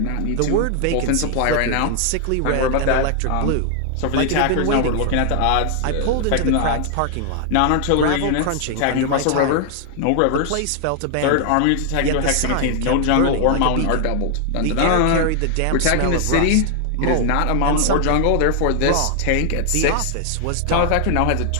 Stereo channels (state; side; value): different; both; correlation 0.00